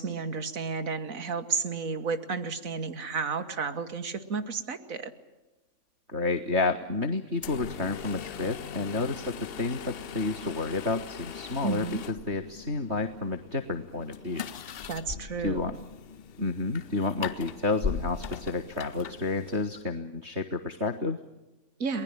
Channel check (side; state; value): left; late; 2.7 ms